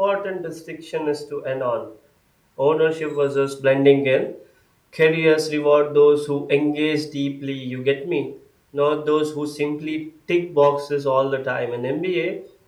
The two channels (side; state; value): both; identical; correlation 1.00